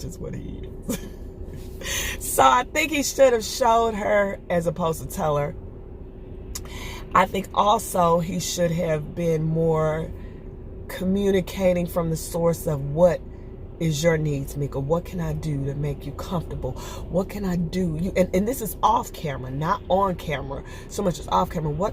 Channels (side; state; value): both; identical; correlation 1.00